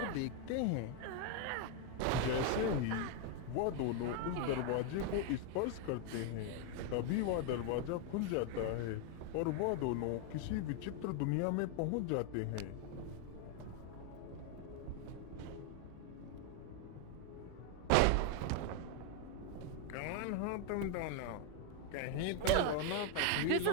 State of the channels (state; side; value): different; both; correlation 0.01